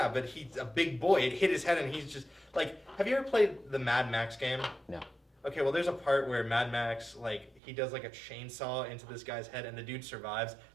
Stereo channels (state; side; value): drops out; left; at 7.6 s